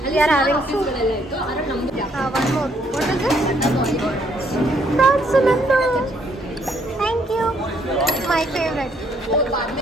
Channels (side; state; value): both; normal; correlation 0.69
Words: ಅಲ್ಲಿ ಆಫೀಸ್ಗಳೆಲ್ಲ ಇತ್ತು. ಅದ್ರಲ್ಲಿ ನಮ್ದು one more. What is this? Prawns ನಂದು. Thank you. My favourite.